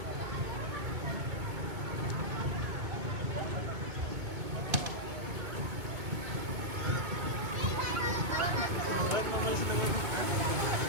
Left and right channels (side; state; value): left; late; 2.5 ms